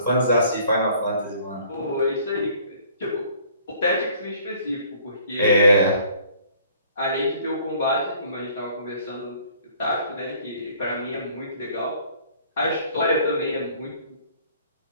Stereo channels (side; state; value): both; inverted; correlation -0.56